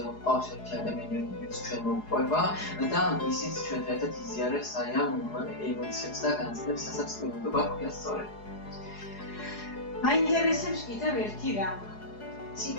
ყავს ერთი ადამიანი, რომელიც ჩვენ მოუყვება და ისიც ჩვენთან ერთად იზიარებს აი ამ ემოციებს და განცდებს, რასაც სტუდენტობა ჰქვია სწორედ. მაინტერესებს კიდევ ერთი რამ.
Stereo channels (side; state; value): right; late; 4.8 ms